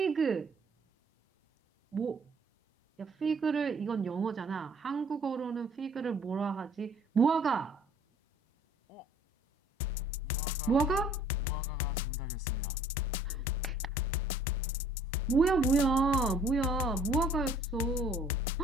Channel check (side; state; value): both; normal; correlation 0.57